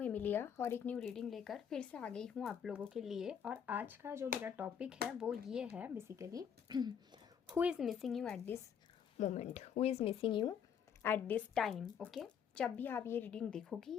Emilia और एक न्यू रीडिंग लेकर फिर से आ गई हूँ आप लोगों के लिए। और आज का जो मेरा टॉपिक है वो ये है basically who is missing you at this moment, who is missing you at this time. Okay, जब भी आप ये रीडिंग देखोगी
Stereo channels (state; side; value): quieter; right; 7.9 dB